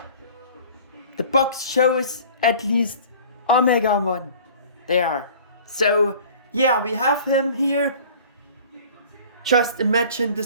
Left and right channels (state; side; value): inverted; both; correlation -0.46